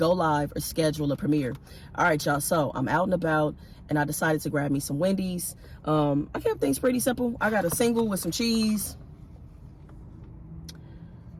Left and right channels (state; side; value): identical; both; correlation 1.00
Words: live, or schedule a premiere. All right, y'all. So I'm out and about, and I decided to grab me some Wendy's. I kept things pretty simple. I got a single with some cheese.